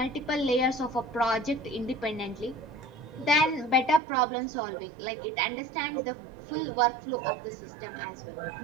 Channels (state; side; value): drops out; left; at 4.0 s